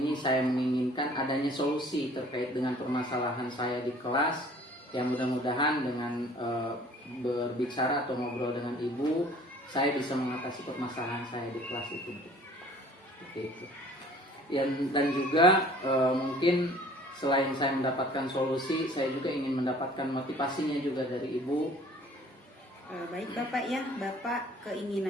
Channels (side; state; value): both; normal; correlation 0.52